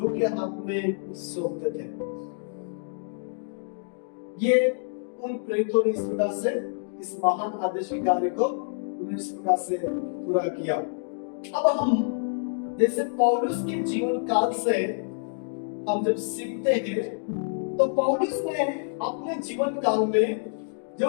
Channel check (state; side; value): silent; right; digital silence